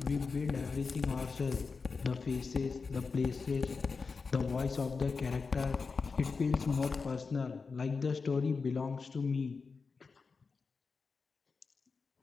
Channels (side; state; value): right; quieter; 4.7 dB